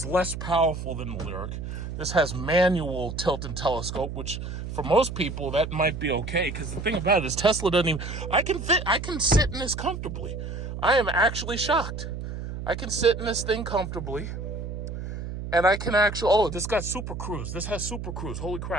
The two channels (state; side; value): noise; right; hum, 7 dB below the sound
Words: less powerful than the Lyriq. This has manual tilt and telescope, which for most people, that might be okay. Because the thing about it is Tesla doesn't even... I can sit in this comfortably. I am actually shocked. I can sit in this thing comfortably. And I can actually... Oh, this got Super Cruise. This has Super Cruise. Holy